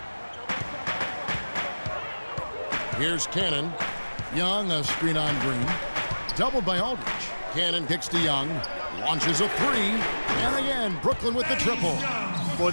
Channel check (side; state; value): both; inverted; correlation -1.00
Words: Here's Cannon. Young, a screen on Green. Doubled by Aldridge. Cannon kicks to Young. Launches a 3. And again, Brooklyn with the triple. Boy,